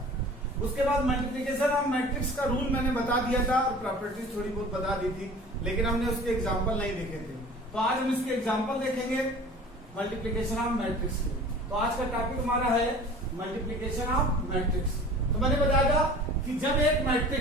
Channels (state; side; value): normal; both; correlation 0.43